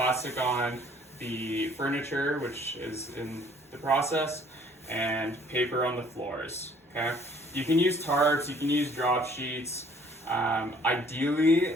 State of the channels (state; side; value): normal; both; correlation 0.58